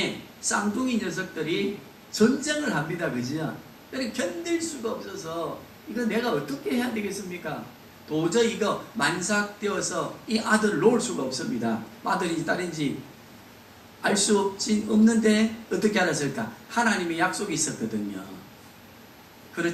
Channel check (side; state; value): both; identical; correlation 1.00